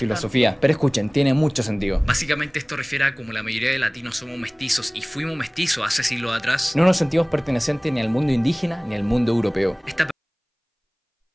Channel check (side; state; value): both; identical; correlation 1.00